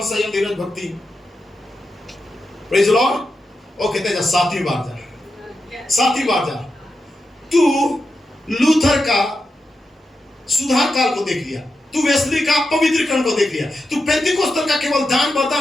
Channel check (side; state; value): both; normal; correlation 0.88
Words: संयम, धीरज, भक्ति, प्रेज़ द लॉर्ड। वो कहते हैं 7वीं बार जा, 7वीं बार जा। तू लूथर का सुधार काल को देख लिया, तू वेस्ली का पवित्रीकरण को देख लिया, तू पेंतिकोस्तर का केवल दान बर्तन